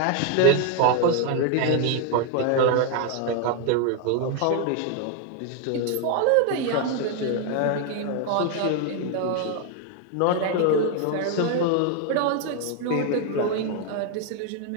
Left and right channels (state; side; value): different; both; correlation 0.01